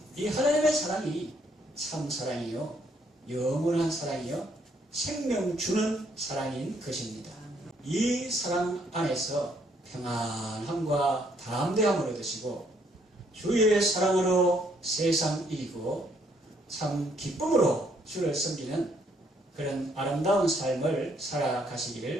이 하나님의 사랑이 참 사랑이요, 영원한 사랑이요, 생명 주는 사랑인 것입니다. 이 사랑 안에서 평안함과 담대함을 얻으시고 주의 사랑으로 세상 이기고 참 기쁨으로 주를 섬기는 그런 아름다운 삶을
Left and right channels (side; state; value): both; normal; correlation 0.69